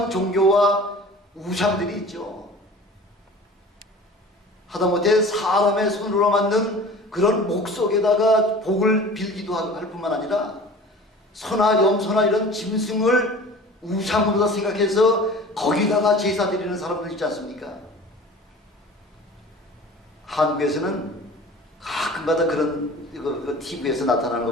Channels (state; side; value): normal; both; correlation 0.42